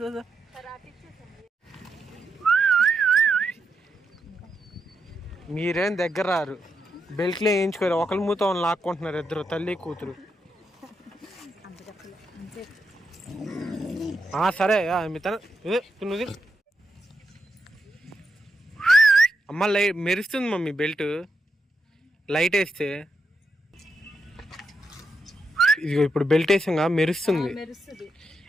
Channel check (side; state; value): both; normal; correlation 0.84